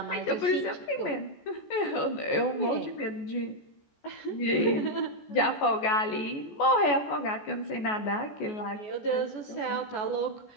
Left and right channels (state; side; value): late; right; 14 ms